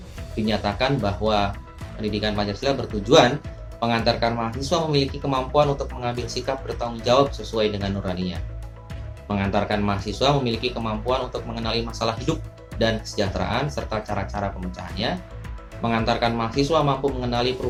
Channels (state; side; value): identical; both; correlation 1.00